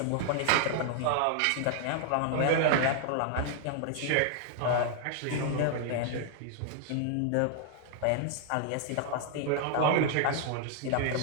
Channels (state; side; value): different; both; correlation 0.00